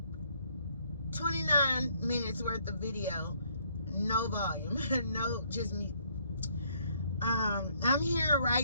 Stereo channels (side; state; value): both; inverted; correlation -0.68